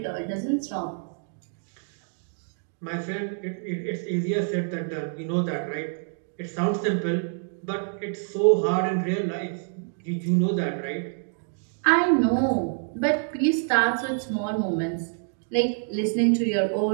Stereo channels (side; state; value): left; silent; 59 dB below the other